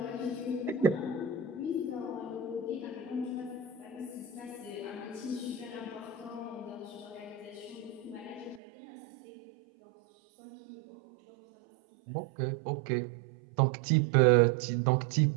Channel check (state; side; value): drops out; left; at 8.6 s